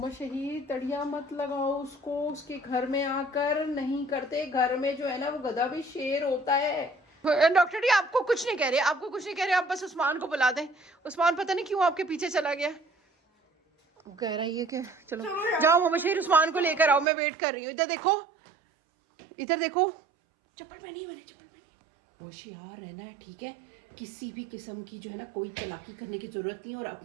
शहीद तड़िया मत लगाओ उसको, उसके घर में आकर नहीं करते। घर में जो है ना वो गधा भी शेर होता है। डॉक्टर जी आपको कुछ नहीं कह रहे, आपको कुछ नहीं कह रहे, आप बस उस्मान को बुला दें। उस्मान पता नहीं क्यों आपके पीछे चला गया, कह रहा है ये कि चलो जाओ मोहम्मद शहीद, उस्मान को लेकर आओ, मैं वेट कर रही हूँ। इधर देखो, इधर देखो, चप्पल पहनी है मैंने, चप्पल पहनी है। होशियार रहना है, ठीक है? किसी भी किस्म की जो है ना कोई चालाकी करने की जरूरत नहीं है, और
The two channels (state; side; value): drops out; left; at 17.1 s